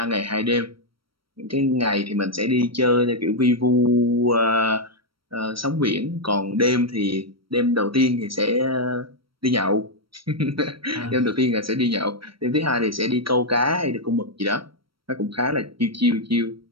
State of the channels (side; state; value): left; late; 0.74 ms